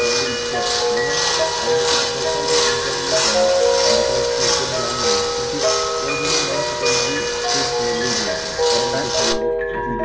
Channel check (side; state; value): both; identical; correlation 1.00